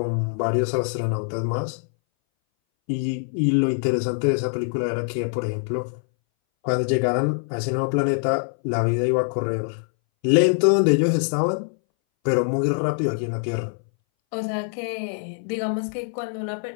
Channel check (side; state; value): right; silent; 61 dB below the other